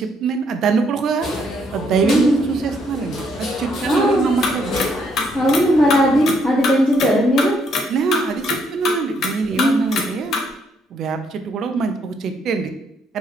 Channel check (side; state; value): both; normal; correlation 0.72